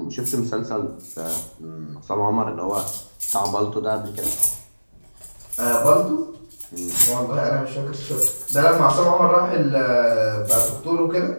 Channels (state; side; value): inverted; both; correlation -1.00